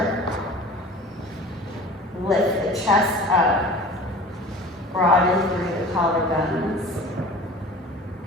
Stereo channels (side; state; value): both; normal; correlation 0.41